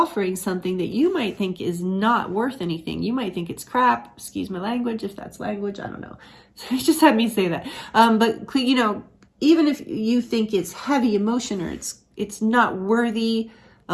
something that you might think is not worth anything, you might think it's crap, excuse my language, if that's language, I don't know. So just had me say that. But, you know, even if you think it's heavy emotion or it's not worthy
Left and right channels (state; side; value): identical; both; correlation 1.00